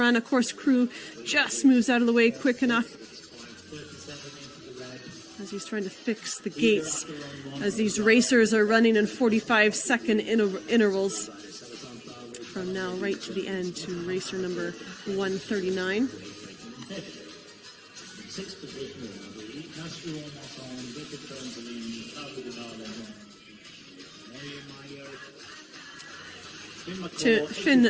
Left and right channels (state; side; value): identical; both; correlation 1.00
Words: Of course, crew just moves out of the way quick enough as he's trying to fix the gates, as these racers are running in 45-second intervals from now right to the end to racer number 139. to Finn